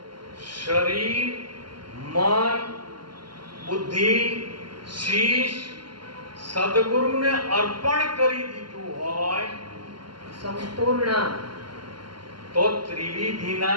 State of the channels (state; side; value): late; left; 0.72 ms